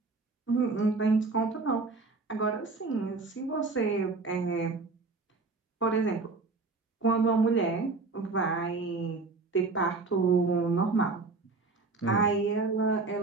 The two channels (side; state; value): left; quieter; 3.9 dB